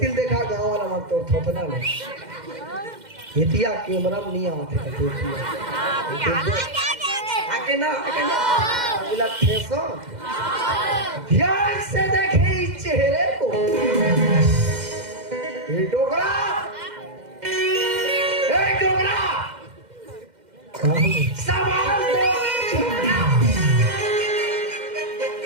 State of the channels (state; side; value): late; left; 2.1 ms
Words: देखा गांव वाला मत तोड़ थोपना ले एतिया कैमरा में नहीं आते का आके ना अगला ठेसो ध्यान से देखे इस चेहरे को। ये डोगरा, ए डोगरा, सवाल